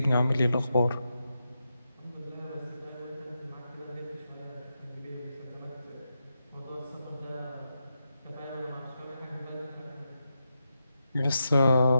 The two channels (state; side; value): inverted; both; correlation -0.87